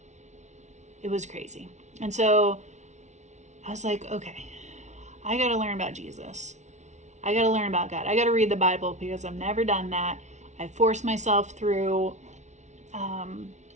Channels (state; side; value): late; left; 0.33 ms